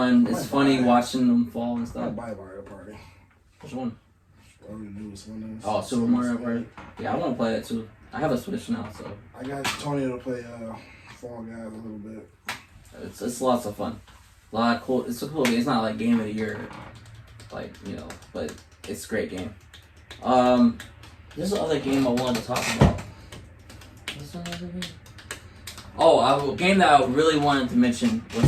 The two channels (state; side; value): identical; both; correlation 1.00